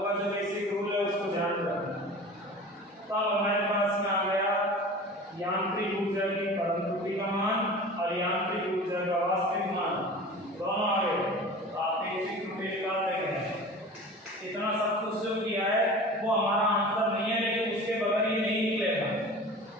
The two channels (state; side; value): normal; both; correlation 0.37